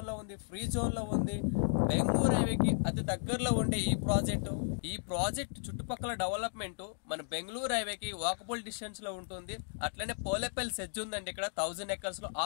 లో ఉంది, ఫ్రీ జోన్ లో ఉంది. బెంగళూరు హైవేకి అతి దగ్గరలో ఉండే ఈ ప్రాజెక్ట్ చుట్టుపక్కల డెవలప్మెంట్ మన బెంగళూరు హైవేకి వాకబుల్ డిస్టెన్స్ లో ఉంటుంది. అట్లనే పోలేపల్లి సెజ్ ఉందండి. ఇక్కడ 1000 ఎకర్స్ లో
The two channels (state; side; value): silent; right; digital silence